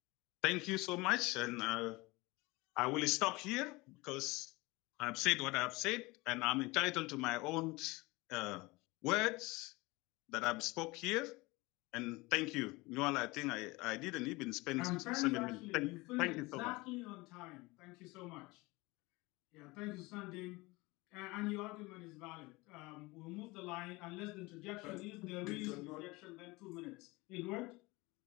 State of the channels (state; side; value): quieter; right; 23.0 dB